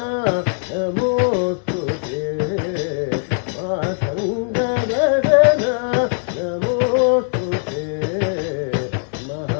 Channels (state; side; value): silent; right; digital silence